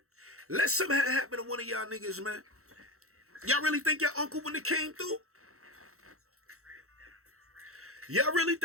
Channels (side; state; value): left; late; 0.63 ms